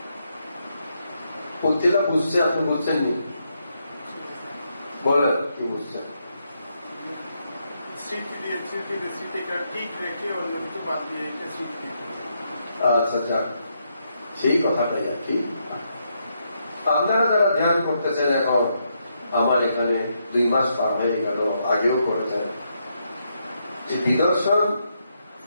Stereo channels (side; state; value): both; inverted; correlation -0.79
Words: পথিলা বুঝছে, আপনি বুঝছেননি? বলেন কি বুঝছেন? আচ্ছা যাক, সেই কথাটাই আর কি। আপনারা যারা ধ্যান করতেছেন এখন, আমার এখানে 2 মাস পার হয়ে গেল, আগেও করেছেন, যে বিদর্শন